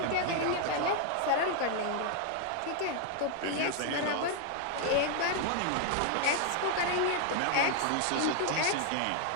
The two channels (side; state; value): both; different; correlation 0.00